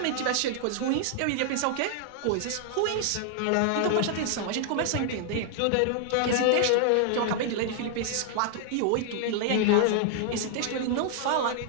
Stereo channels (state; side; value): different; both; correlation 0.00